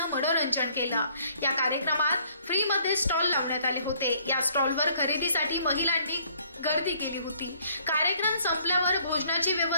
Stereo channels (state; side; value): inverted; both; correlation -0.62